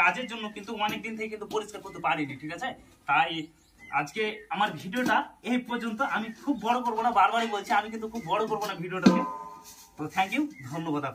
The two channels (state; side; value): identical; both; correlation 1.00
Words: জন্য কিন্তু অনেক দিন থেকে কিন্তু পরিষ্কার করতে পারিনি, ঠিক আছে? তাই আজকে আমার ভিডিওটা এই পর্যন্ত। আমি খুব বড় করবো না, বারবারই বলছি, আমি কিন্তু খুব বড় করবো না ভিডিওটাকে। তো থ্যাংক ইউ, ধন্যবাদ